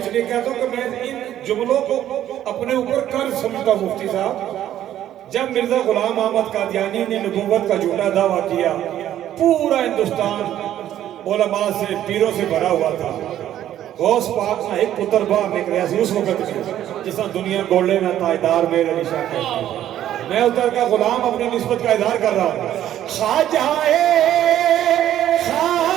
لیے کہتا ہوں کہ میں ان جملوں کو اپنے اوپر قرض سمجھتا ہوں مفتی صاحب جب مرزا غلام احمد قادیانی نے نبوت کا جھوٹا دعویٰ کیا پورا ہندوستان علماء سے پیروں سے بھرا ہوا تھا غوث پاک نہ ایک پتر باہر نکلیا سی اس وقت میں جس طرح دنیا گولے میں تاجدار میرے نشان کہتی میں ادھر کا غلام اپنی نسبت کا اظہار کر رہا ہوں خواجہ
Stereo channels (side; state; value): left; quieter; 11.8 dB